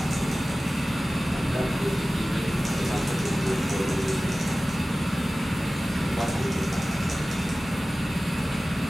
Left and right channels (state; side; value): normal; both; correlation 0.97